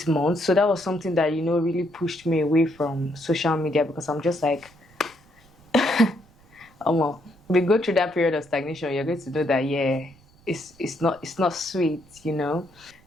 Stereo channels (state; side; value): noise; right; rumble, 28 dB below the sound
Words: months. So that was something that, you know, really pushed me away from social media, because I'm just like, well, we go through that period of stagnation, you're going to know that, yeah, it's not sweet, you know.